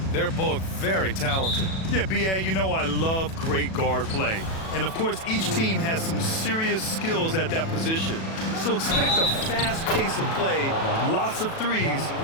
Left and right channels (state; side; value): late; right; 37 ms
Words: They're both very talented. Yeah, B.A., you know I love great guard play. And, of course, each team has some serious skills at that position. So expect a fast pace of play, lots of threes.